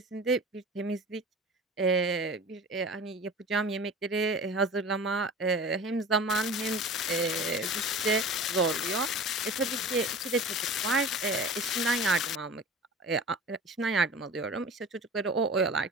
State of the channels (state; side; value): normal; both; correlation 0.38